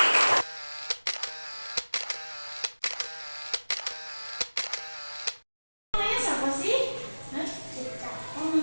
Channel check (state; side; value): inverted; both; correlation -1.00